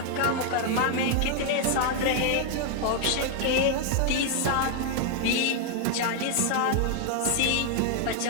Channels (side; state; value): both; different; correlation 0.00